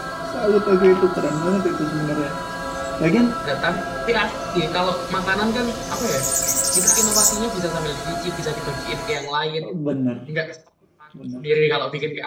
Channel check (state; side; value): identical; both; correlation 1.00